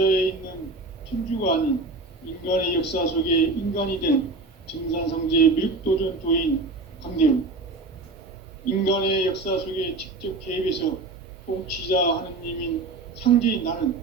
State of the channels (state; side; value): quieter; left; 3.5 dB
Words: 있는 천주가 아닌 인간의 역사 속에 인간이 된 증산상제의 미륵도전 도인 강대우, 인간의 역사 속에 직접 개입해서 통치자 하느님인 상제인 나는